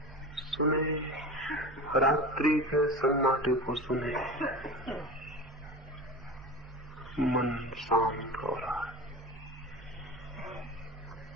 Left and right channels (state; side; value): normal; both; correlation 0.31